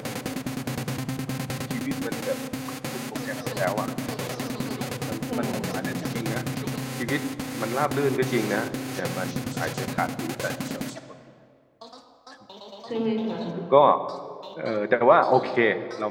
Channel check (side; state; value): both; identical; correlation 1.00